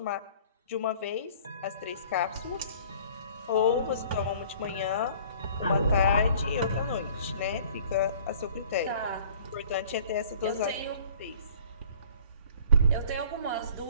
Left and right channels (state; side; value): inverted; both; correlation -0.52